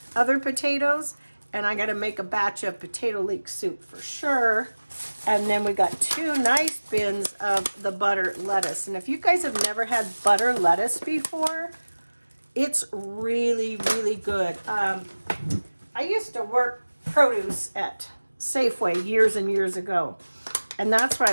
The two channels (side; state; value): both; inverted; correlation -1.00